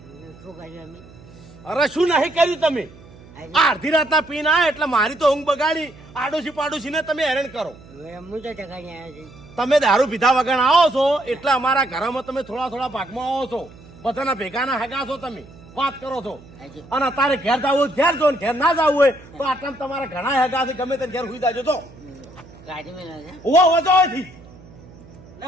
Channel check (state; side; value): noise; right; hum, 21 dB below the sound